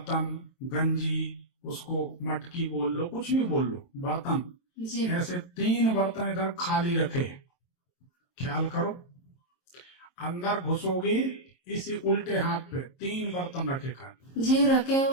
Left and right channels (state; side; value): late; right; 22 ms